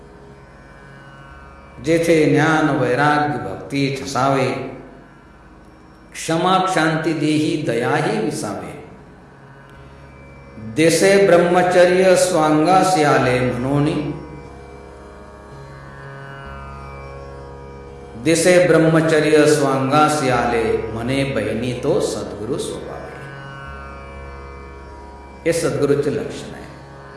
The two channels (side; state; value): both; identical; correlation 1.00